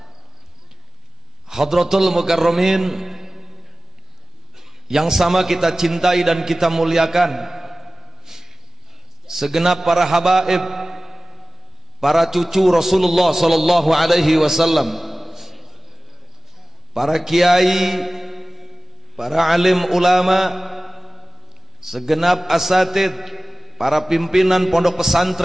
Hadratul Mukarramin yang sama kita cintai dan kita muliakan, segenap para habaib, para cucu Rasulullah sallallahu alaihi wasallam, para kiai, para alim ulama, segenap asatid, para pimpinan pondok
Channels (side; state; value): both; normal; correlation 0.97